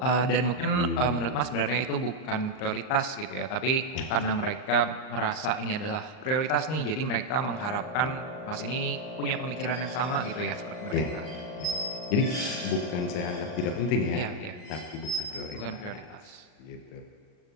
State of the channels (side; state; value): right; late; 39 ms